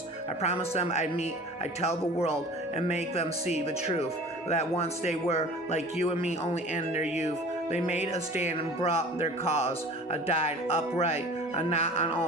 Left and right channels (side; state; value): both; normal; correlation 0.42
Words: I promised them I'd tell the world and make them see the truth. That once they were like you and me, only in their youth. They made a stand and brought their cause. Died upright, not on